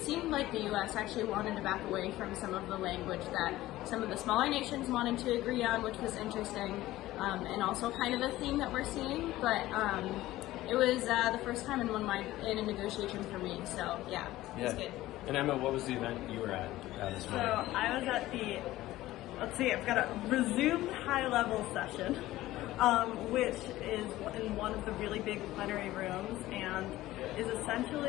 seemed like the U.S. actually wanted to back away from some of the language that some of the smaller nations wanted to agree on, which was interesting, and also kind of a theme that we're seeing. But it was the first time in a negotiation for me, so it was good. And Emma, what was the event you were at this morning? So I was at I've got a resumed high-level session, which is in one of the really big plenary rooms and is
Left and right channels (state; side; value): quieter; right; 16.2 dB